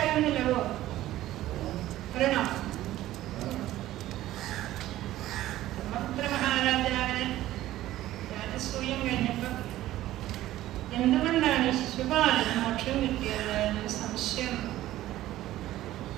എന്തുകൊണ്ടാണ് ശിശുപാലന് മോക്ഷം കിട്ടിയത് എന്നൊരു സംശയം.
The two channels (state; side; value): quieter; left; 14.7 dB